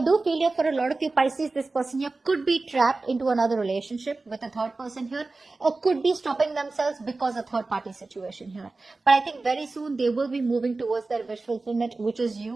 do feel here for a lot of you Pisces, this person here could be trapped into another relationship with a third person here, or could be stopping themselves because of third party situation here. But I think very soon they will be moving towards their wish fulfillment, which is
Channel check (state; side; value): quieter; left; 3.5 dB